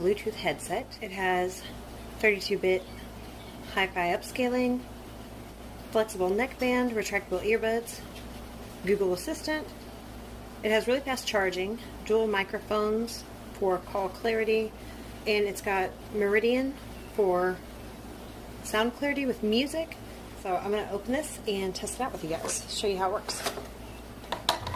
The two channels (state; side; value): identical; both; correlation 1.00